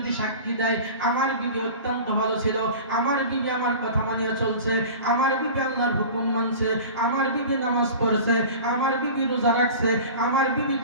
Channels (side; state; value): both; inverted; correlation -0.36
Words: সাক্ষী দেয়, আমার বিবি অত্যন্ত ভালো ছিল, আমার বিবি আমার কথা মানিয়ে চলছে, আমার বিবি আল্লাহর হুকুম মানছে, আমার বিবি নামাজ পড়ছে, আমার বিবি রোজা রাখছে, আমার বিবি